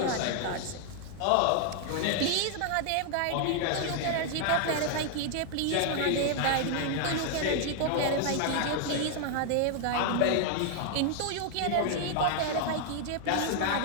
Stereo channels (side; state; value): both; different; correlation 0.00